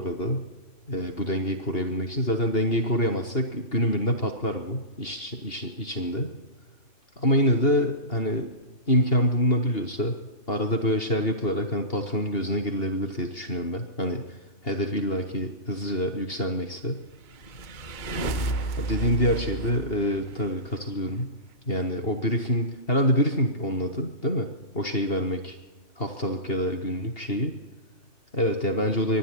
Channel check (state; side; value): late; right; 2.8 ms